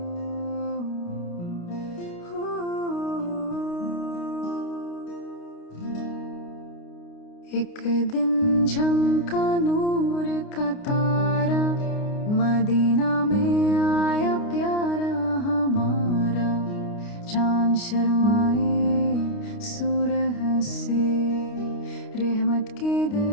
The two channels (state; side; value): late; right; 29 ms